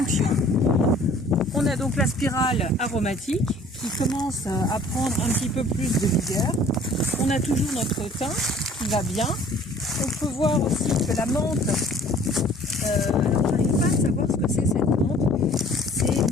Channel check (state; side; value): normal; both; correlation 0.52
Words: On a donc la spirale aromatique qui commence à prendre un petit peu plus de vigueur. On a toujours notre thym qui va bien. On peut voir aussi que la menthe, alors je n'arrive pas à savoir ce que c'est cette menthe, c'est